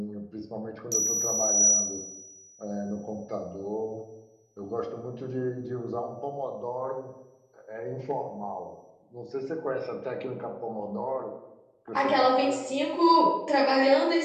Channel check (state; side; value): identical; both; correlation 1.00